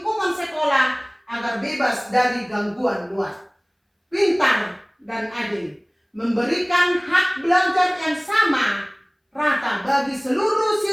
sekolah agar bebas dari gangguan luar. Pintar dan adil, memberikan hak belajar yang sama rata bagi seluruh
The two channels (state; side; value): identical; both; correlation 1.00